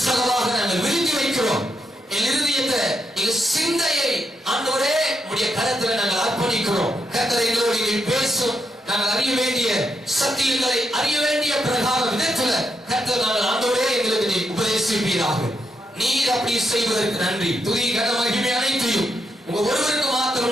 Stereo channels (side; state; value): both; normal; correlation 0.82